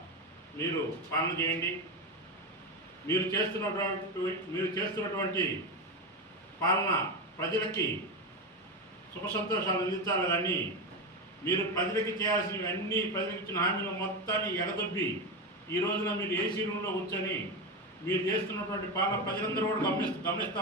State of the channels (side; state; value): both; normal; correlation 0.16